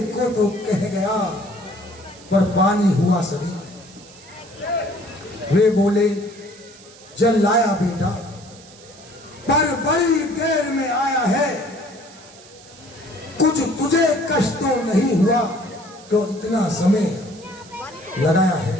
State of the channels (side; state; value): right; noise; hiss, 22 dB below the sound